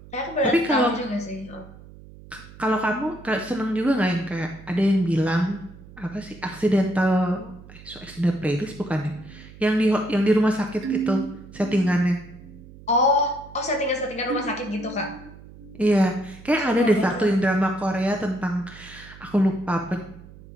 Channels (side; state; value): right; noise; hum, 19 dB below the sound